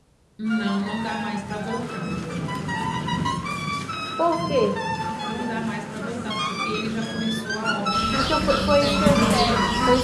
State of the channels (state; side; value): identical; both; correlation 1.00